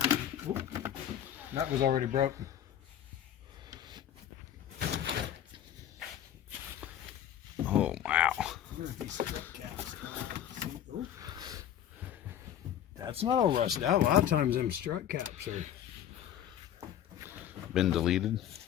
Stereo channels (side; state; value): right; quieter; 10.3 dB